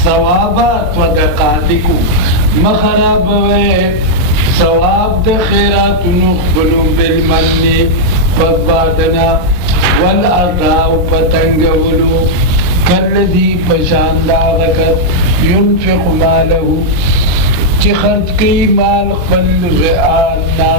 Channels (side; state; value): left; late; 22 ms